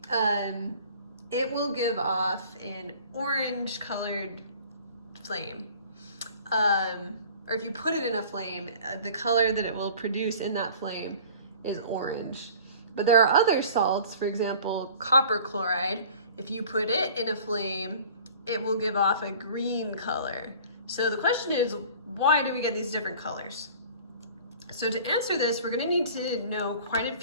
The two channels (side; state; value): both; inverted; correlation -0.46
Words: it will give off an orange colored flame. Or if you put it in a flame, the color that it will produce in that flame is orange. But there are other salts, for example, copper chloride. If you put it in a flame, it will give off a green color. So the question is, why do we get these different colors? So to answer this, we're gonna need to know quite a